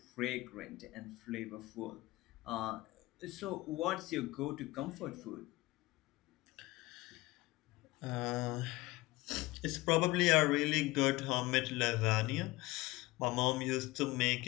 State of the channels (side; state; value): right; quieter; 20.3 dB